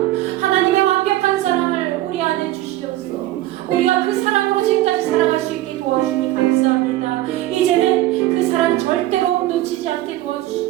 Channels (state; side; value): quieter; left; 15.5 dB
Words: 하나님의 완벽한 사랑을 우리 안에 주시옵소서. 우리가 그 사랑으로 지금까지 살아갈 수 있게 도와주니 감사합니다. 이제는 그 사랑 절대로 놓치지 않게